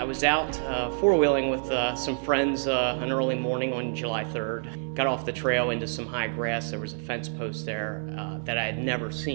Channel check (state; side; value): silent; left; 60 dB below the other